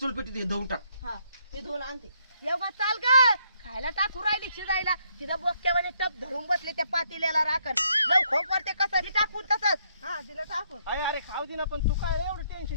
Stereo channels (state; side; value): inverted; both; correlation -0.72